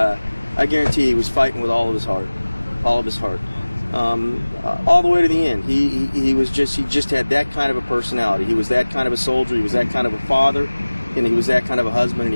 I guarantee he was fighting with all of his heart. All the way to the end. He just had that kind of a personality. He was that kind of a soldier, he was that kind of a father, and he was that kind of a husband, and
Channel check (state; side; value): inverted; both; correlation -1.00